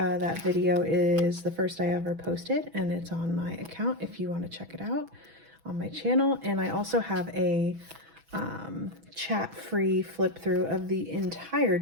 video is the first I ever posted, and it's on my account if you want to check it out on my channel. And I also have a chat-free flip through of the entire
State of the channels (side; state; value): left; late; 6.1 ms